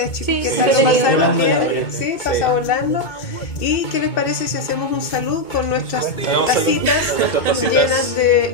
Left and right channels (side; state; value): right; late; 2.2 ms